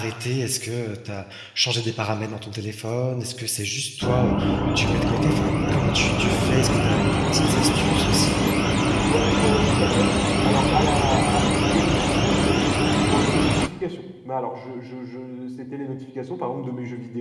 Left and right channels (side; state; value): both; identical; correlation 1.00